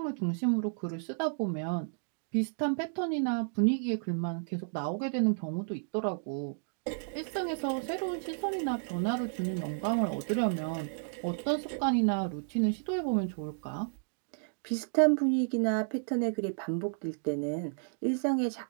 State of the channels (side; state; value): left; silent; digital silence